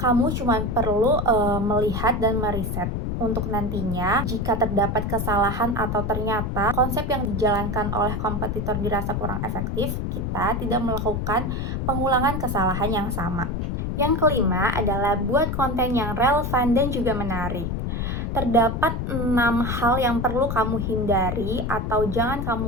cuma perlu melihat dan meriset. Untuk nantinya, jika terdapat kesalahan atau ternyata konsep yang dijalankan oleh kompetitor dirasa kurang efektif, kita tidak melakukan pengulangan kesalahan yang sama. Yang kelima adalah buat konten yang relevan dan juga menarik. Terdapat 6 hal yang perlu kamu hindari atau jangan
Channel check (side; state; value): left; noise; rumble, 2 dB below the sound